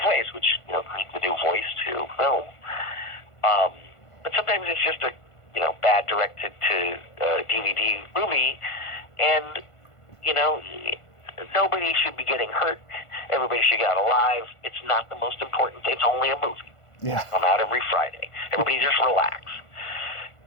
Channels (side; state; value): right; late; 1.5 ms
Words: ways, which create the new voice to film. But sometimes it's just a bad directed to DVD movie, and nobody should be getting hurt. Everybody should get out alive. It's not the most important thing. It's only a movie. Yeah. I'm out every Friday. Everybody just relax.